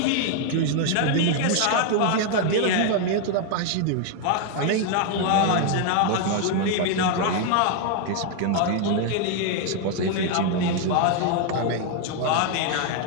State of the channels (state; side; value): different; both; correlation 0.00